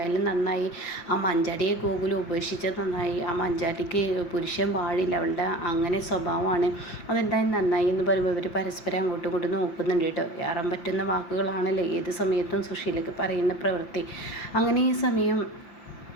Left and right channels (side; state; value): right; late; 5.8 ms